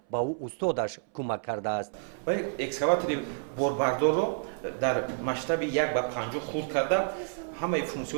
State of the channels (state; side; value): silent; left; 58 dB below the other